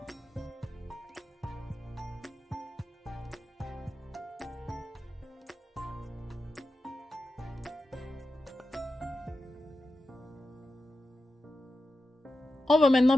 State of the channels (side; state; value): both; normal; correlation 0.91